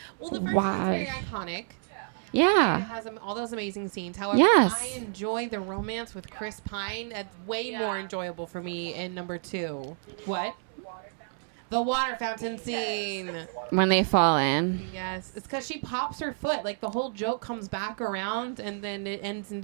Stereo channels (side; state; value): left; silent; 58 dB below the other